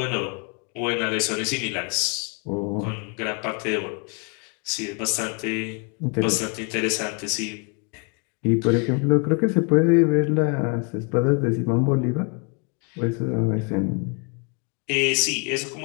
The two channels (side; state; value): right; quieter; 35.0 dB